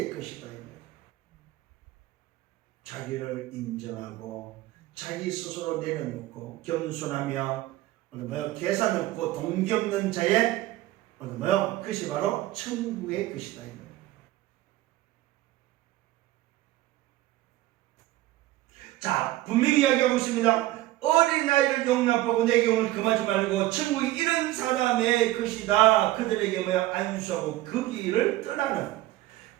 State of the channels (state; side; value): quieter; left; 16.4 dB